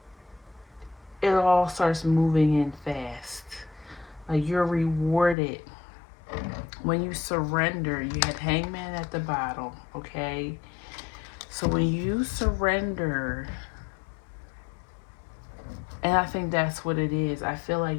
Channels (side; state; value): right; drops out; at 5.4 s